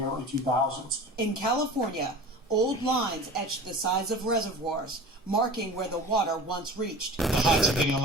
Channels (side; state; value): both; normal; correlation 0.38